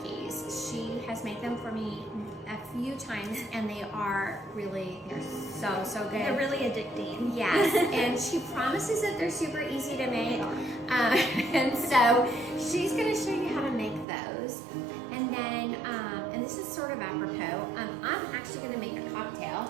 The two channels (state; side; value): drops out; left; at 14.1 s